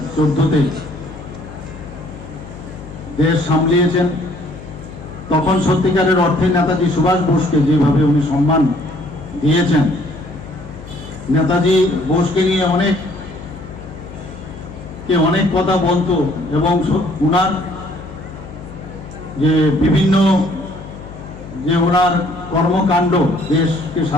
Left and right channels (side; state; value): left; noise; hum, 15 dB below the sound